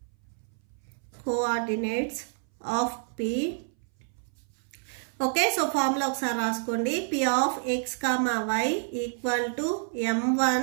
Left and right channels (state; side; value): silent; left; 59 dB below the other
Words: of P. Okay, so formula ఒకసారి రాసుకోండి. P of X, Y equal to M1